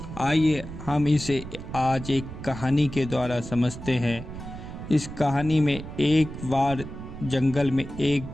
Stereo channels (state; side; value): noise; right; rumble, 11 dB below the sound